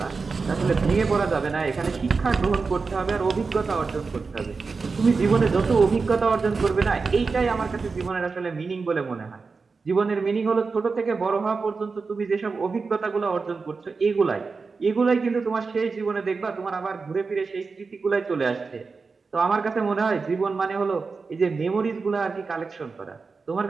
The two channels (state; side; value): quieter; left; 4.5 dB